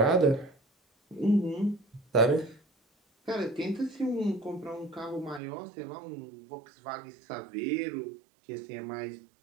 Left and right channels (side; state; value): left; drops out; at 5.4 s